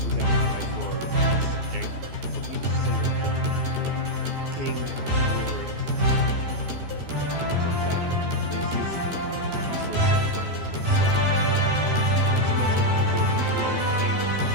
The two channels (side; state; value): left; late; 12 ms